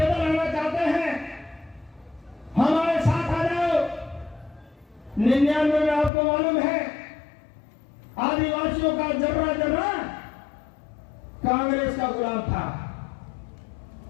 आना चाहते हैं, हमारे साथ आ जाओ। 99 में आपको मालूम है आदिवासियों का जर्रा जर्रा कांग्रेस का गुलाम था,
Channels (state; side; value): drops out; right; at 6.1 s